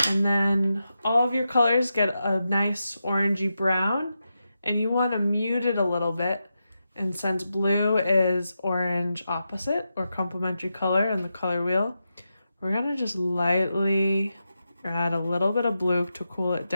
And then all of your colors get a nice orangey brown, and you want to mute it a little bit. And since blue is orange opposite or complementary color in the color wheel, we're going to just lightly add a little bit of blue to cool it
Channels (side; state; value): both; inverted; correlation -0.88